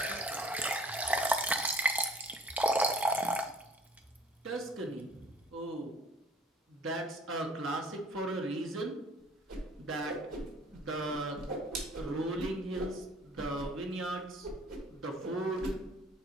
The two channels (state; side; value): normal; both; correlation 0.53